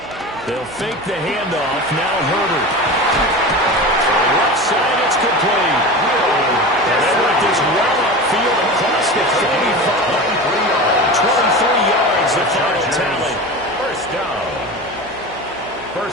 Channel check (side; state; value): right; noise; hum, 20 dB below the sound